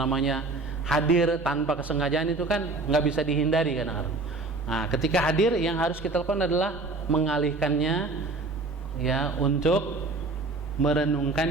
hadir tanpa kesengajaan itu kan nggak bisa dihindari kadang-kadang. Nah, ketika hadir yang harus kita lakukan adalah mengalihkannya, ya, untuk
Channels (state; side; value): quieter; left; 3.3 dB